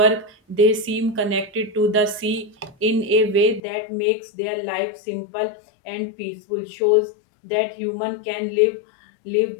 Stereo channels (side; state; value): right; drops out; at 3.6 s